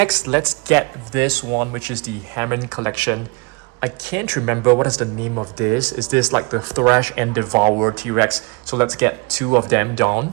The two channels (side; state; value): left; quieter; 29.3 dB